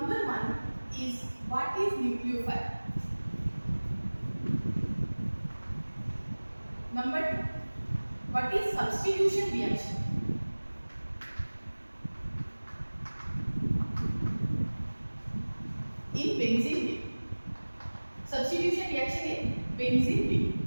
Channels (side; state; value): both; inverted; correlation -1.00